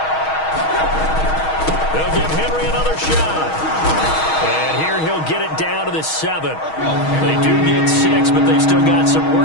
They'll give Henry another shot. And here he'll get it down to the 7. They do get 6, but they've still got some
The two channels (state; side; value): late; right; 6.3 ms